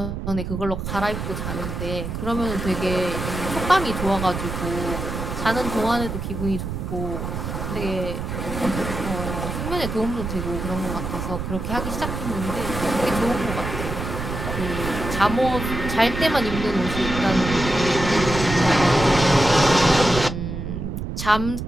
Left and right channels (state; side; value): noise; right; rumble, 5 dB below the sound